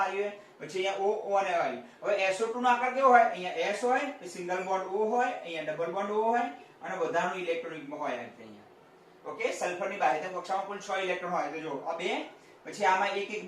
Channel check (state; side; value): identical; both; correlation 1.00